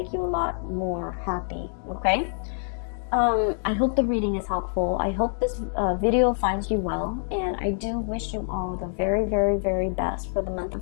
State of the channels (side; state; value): right; silent; digital silence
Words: you a lot more happy, okay? I hope the reading is helpful. I hope this video finds you well, and I do wish you all the very, very, very best for the month